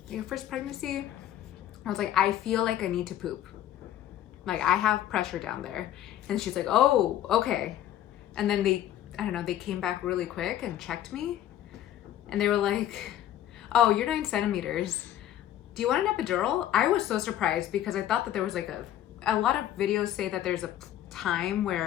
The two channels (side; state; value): right; quieter; 12.0 dB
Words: Your first pregnancy? I was like, I feel like I need to poop. Like, I have pressure down there. And she's like, oh, okay. And then they came back really quick and checked me. And they were like, oh, you're 9 centimeters. Do you want an epidural? I was so surprised because I thought that there was like a lot of videos say that there's a time